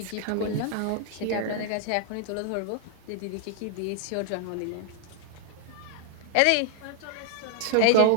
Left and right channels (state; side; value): different; both; correlation 0.00